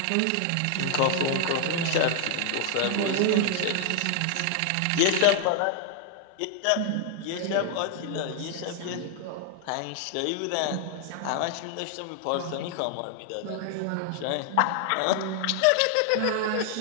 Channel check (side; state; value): both; different; correlation 0.00